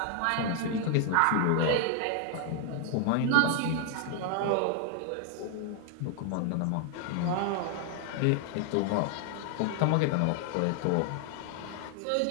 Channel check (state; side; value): different; both; correlation 0.00